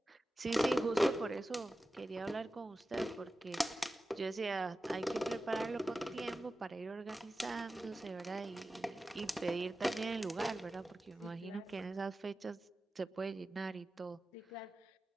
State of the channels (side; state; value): both; normal; correlation 0.94